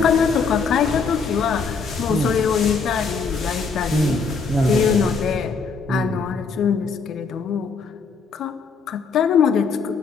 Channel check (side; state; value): right; quieter; 5.0 dB